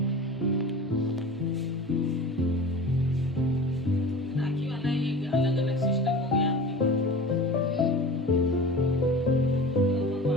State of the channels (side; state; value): both; normal; correlation 0.35